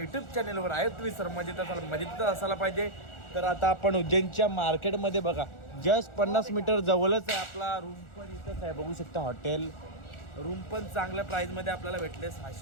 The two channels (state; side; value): late; right; 1.4 ms